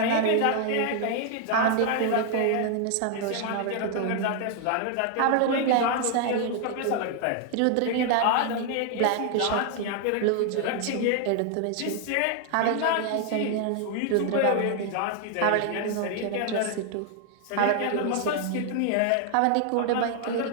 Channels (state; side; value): different; both; correlation 0.00